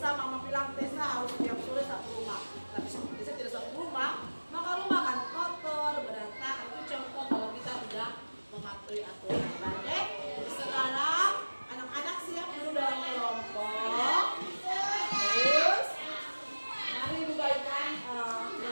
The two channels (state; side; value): inverted; both; correlation -1.00